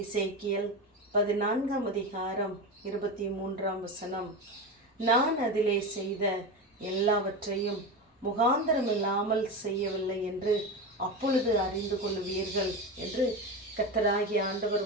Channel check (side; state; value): both; normal; correlation 0.21